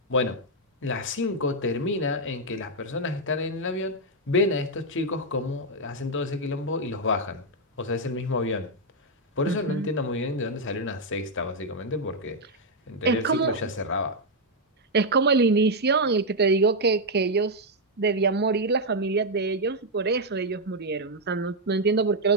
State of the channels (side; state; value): both; normal; correlation -0.01